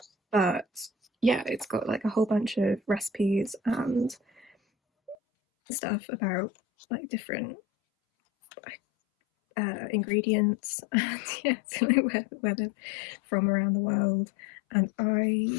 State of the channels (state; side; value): drops out; right; at 5.2 s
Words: But yeah, it's got a whole bunch of recipes and stuff about different ingredients, and yeah, so where they're from around the world. And